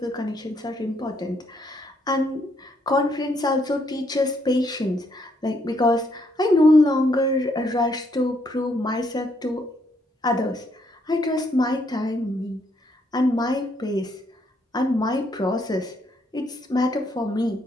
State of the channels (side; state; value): both; normal; correlation 0.72